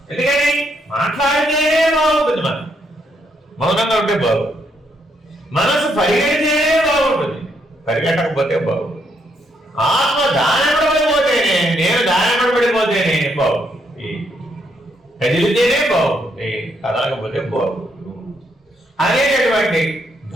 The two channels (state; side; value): normal; both; correlation 0.75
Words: ఎందుకని మాట్లాడితే బాగుంటుంది, మనం మౌనంగా ఉంటే బాగుంటుంది. మనసు పరిగెడితే బాగుంటుంది, పరిగెట్టకపోతే బాగుంటుంది. ఆత్మ దానపడిపోతేనే నేను దానపడిపోతేనే బాగుంటుంది, కదిలితేనే బాగుంటుంది, కదలకపోతే బాగుంటుంది అనేటటువంటి